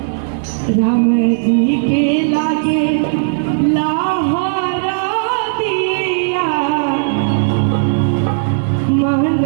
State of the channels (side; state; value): left; silent; 58 dB below the other